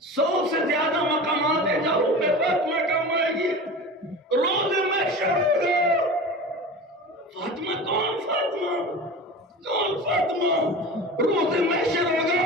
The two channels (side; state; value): both; normal; correlation 0.33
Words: 100 سے زیادہ مقامات ہیں جہاں روح فاطمہ کام آئے گی، روز محشر ہوگا۔ فاطمہ کون؟ فاطمہ روز محشر